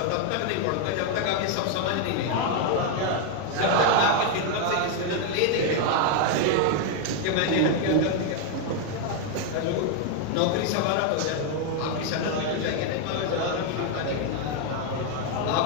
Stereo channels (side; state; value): both; different; correlation 0.01